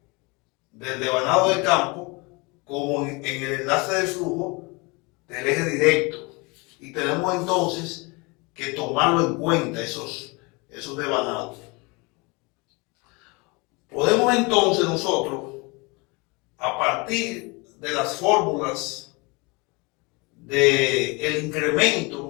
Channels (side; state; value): right; quieter; 27.5 dB